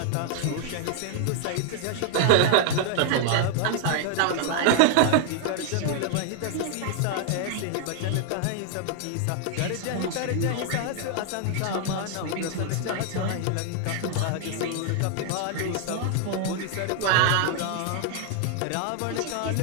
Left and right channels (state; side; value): different; both; correlation 0.00